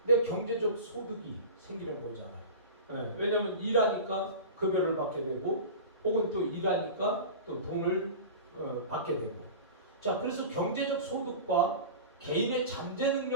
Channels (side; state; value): both; inverted; correlation -0.32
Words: 내 경제적 소득이 생기는 거잖아요. 왜냐하면 일하니까 급여를 받게 되고, 혹은 또 일하니까 또 돈을 받게 되고. 자, 그래서 경제적 소득과 개인의 잠재